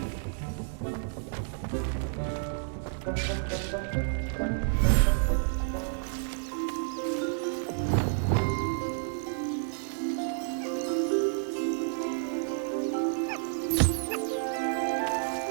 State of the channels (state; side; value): silent; left; 58 dB below the other